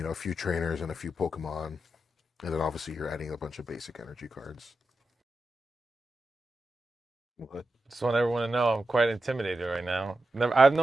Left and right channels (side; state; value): both; normal; correlation 0.89